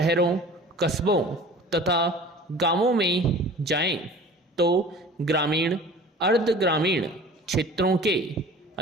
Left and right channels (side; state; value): both; normal; correlation 0.43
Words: कस्बों तथा गांवों में जाएं तो ग्रामीण, अर्ध ग्रामीण क्षेत्रों के